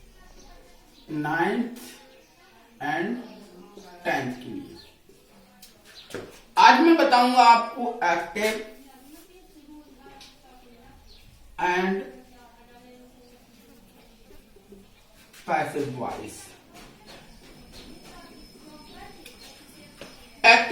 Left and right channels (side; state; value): both; identical; correlation 1.00